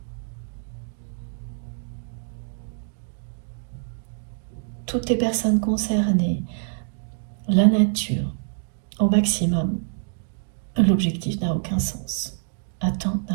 Toutes les personnes concernées, la nature, au maximum, l'objectif n'a aucun sens. Atteindre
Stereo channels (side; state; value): left; silent; digital silence